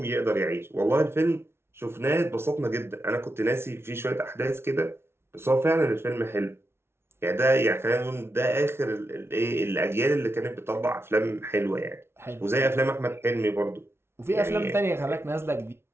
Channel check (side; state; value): left; late; 0.12 ms